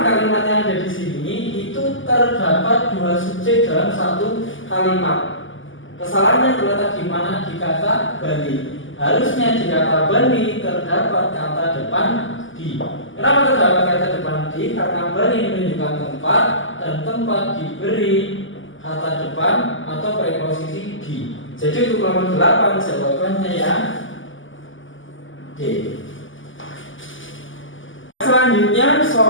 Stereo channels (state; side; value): late; right; 0.57 ms